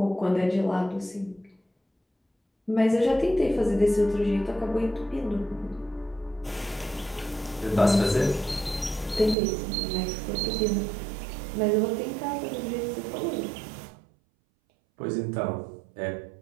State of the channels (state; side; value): drops out; left; at 9.3 s